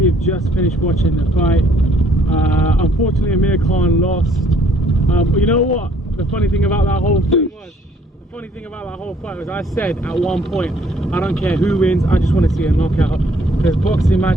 have just finished watching the fight. Unfortunately, Amir Khan lost. But you know what? The funny thing about that whole thing was, the funny thing about that whole fight was, I said at one point, I don't care who wins, I just want to see a knockout. Because boxing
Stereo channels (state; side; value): normal; both; correlation 0.63